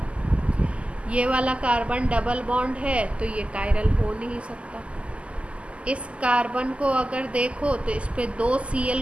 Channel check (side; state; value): left; late; 0.057 ms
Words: ये वाला कार्बन डबल बॉन्ड है तो ये कायरल हो नहीं सकता। इस कार्बन को अगर देखो तो इस पे 2